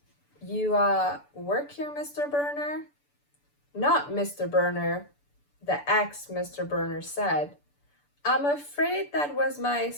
"you, work here, Mr. Burner?" "Not Mr. Burner," the ex-Mr. Burner said. "I'm afraid that was my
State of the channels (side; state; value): right; late; 6.9 ms